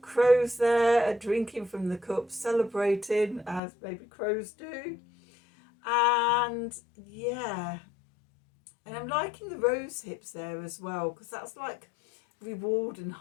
crows there drinking from the cup, celebrating as baby crows do. And yeah, and I'm liking the rose hips there as well, because that's like reward and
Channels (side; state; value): right; drops out; at 3.6 s